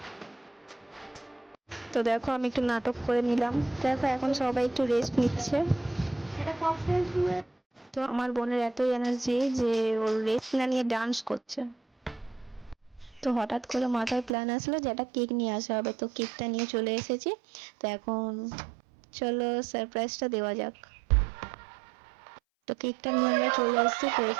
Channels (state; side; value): drops out; left; at 14.4 s